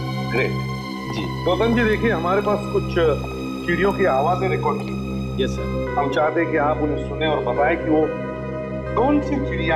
ग्रेट जी। गौतम जी, देखिए हमारे पास कुछ चिड़ियों की आवाजें रिकॉर्ड की। Yes sir. हम चाहते हैं कि आप उन्हें सुने और बताएं कि वो कौन सी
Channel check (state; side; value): identical; both; correlation 1.00